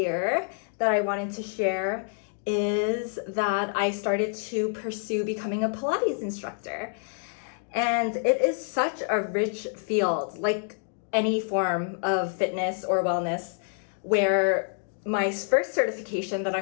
that I wanted to share is that I started to pursue becoming a Pilates instructor. And it is such a rich field, like any form of fitness or wellness, where my first certification that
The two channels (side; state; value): right; silent; digital silence